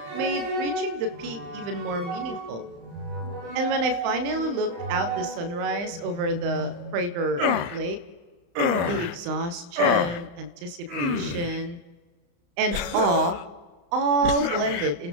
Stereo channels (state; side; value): late; left; 35 ms